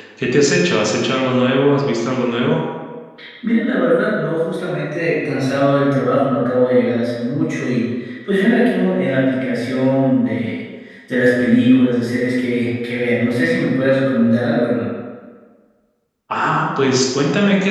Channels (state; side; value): identical; both; correlation 1.00